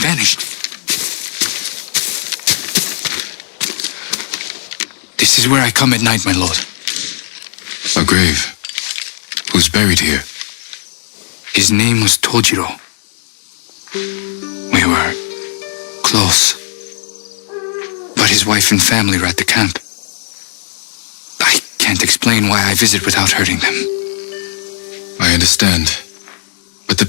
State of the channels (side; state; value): right; silent; digital silence